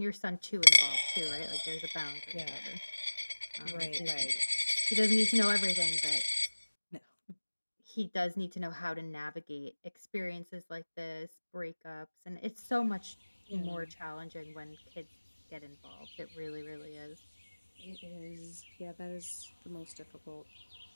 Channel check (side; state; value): both; inverted; correlation -1.00